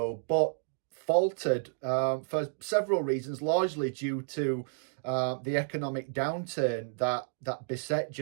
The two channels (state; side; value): silent; left; digital silence